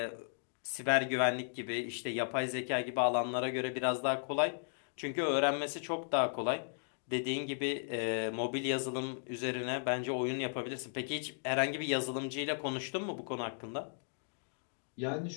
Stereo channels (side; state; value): right; silent; digital silence